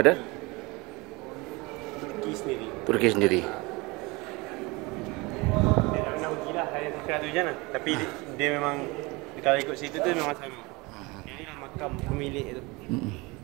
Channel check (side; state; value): left; quieter; 25.0 dB